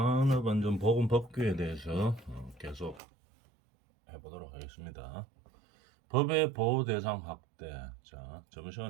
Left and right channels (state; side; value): drops out; left; at 3.0 s